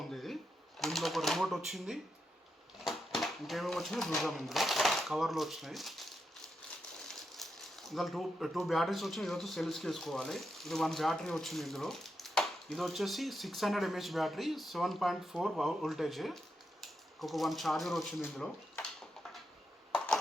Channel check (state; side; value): normal; both; correlation 0.85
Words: ఇది దీంట్లో ఒక రిమోట్ వచ్చింది. ఇంకేమేమి వచ్చినాయి చూద్దాం. ఇందులో కవర్లు వచ్చినాయి. ఇందులో టూ బ్యాటరీస్ వచ్చినాయి. ఇది వచ్చి సెల్స్కి వేసుకోవాలి. ఇది 1 బ్యాటరీ వచ్చింది ఇందులో. ఇది వచ్చేసి 600 mAh బ్యాటరీ, 7.4 వోల్టేజ్. ఒక 1 ఛార్జర్ వచ్చింది ఇందులో.